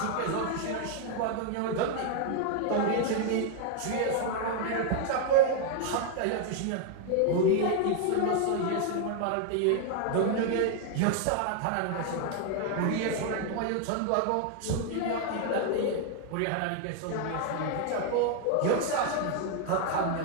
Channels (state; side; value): different; both; correlation 0.00